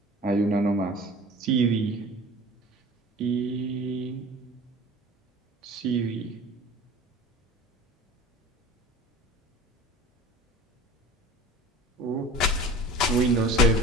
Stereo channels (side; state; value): both; normal; correlation 0.40